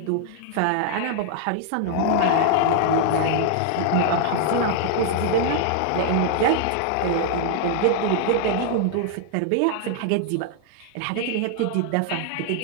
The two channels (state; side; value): different; both; correlation 0.00